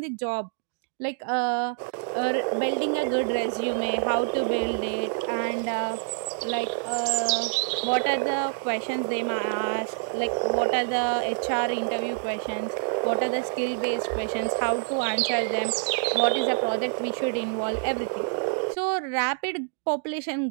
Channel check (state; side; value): silent; left; 60 dB below the other